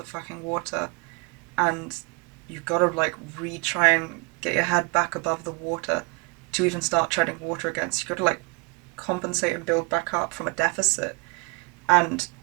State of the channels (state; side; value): quieter; left; 30.4 dB